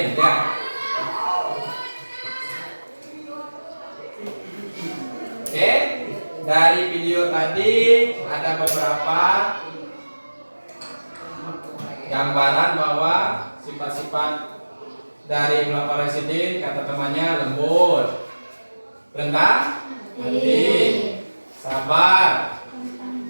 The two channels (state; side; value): inverted; both; correlation -1.00